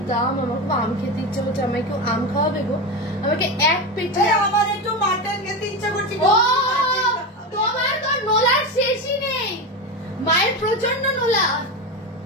দাম? আমার খুব আম খেতে ইচ্ছা করছে। আমাকে কেউ আম খাওয়াবে গো? আমাকে এক পেটে। আমার একটু মাটন খেতে ইচ্ছা করছে। ও তোমার তো নোলার শেষই নেই, মায়ের প্রচন্ড নোলা।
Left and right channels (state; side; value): normal; both; correlation 0.19